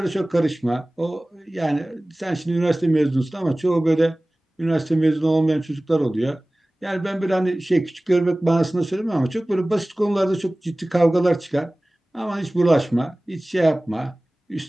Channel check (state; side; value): normal; both; correlation 0.98